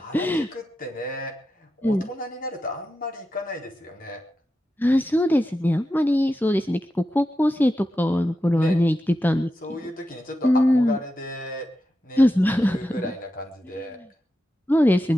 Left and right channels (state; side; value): normal; both; correlation 0.90